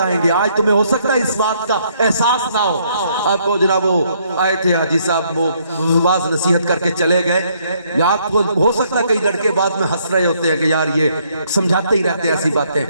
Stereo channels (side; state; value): both; inverted; correlation -0.69